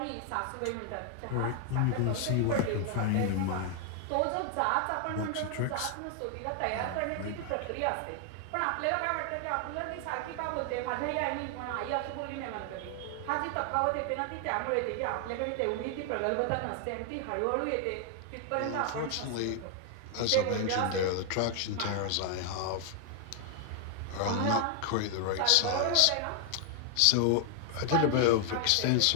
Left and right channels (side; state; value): both; different; correlation 0.00